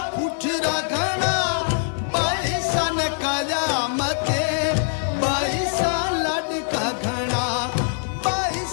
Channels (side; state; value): right; silent; digital silence